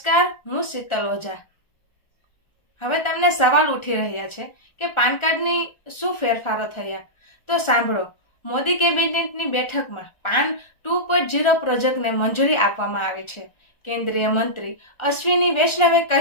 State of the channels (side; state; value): right; late; 1.4 ms